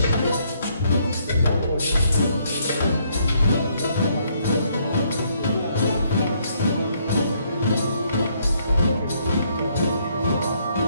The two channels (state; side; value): inverted; both; correlation -0.70